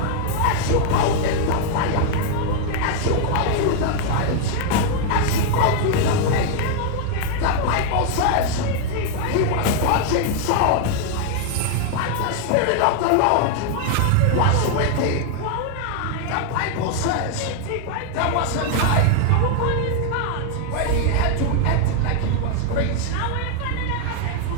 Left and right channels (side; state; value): both; different; correlation 0.00